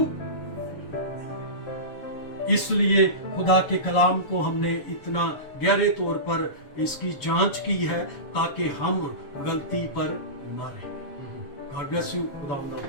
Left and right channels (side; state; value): right; late; 7.1 ms